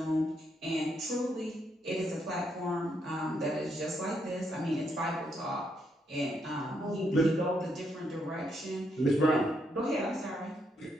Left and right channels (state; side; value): normal; both; correlation 0.77